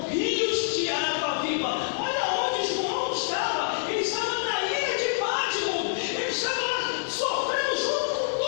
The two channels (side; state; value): right; silent; 60 dB below the other